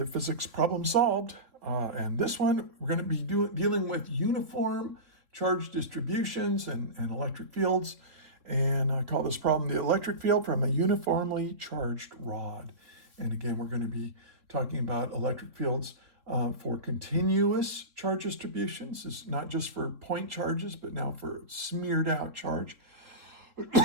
physics problem solved. And this one, we're going to be dealing with uniform charge distributions and electric fields. And I call this problem the electric field from a uniformly charged rod. And again, we're going to be talking about electric fields for continuous charge distributions. It's not just for point charges, but now for smeared out charge.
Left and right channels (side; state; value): left; late; 3.6 ms